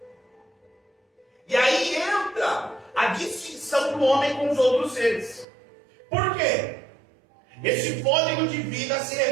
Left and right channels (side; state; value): left; drops out; at 5.5 s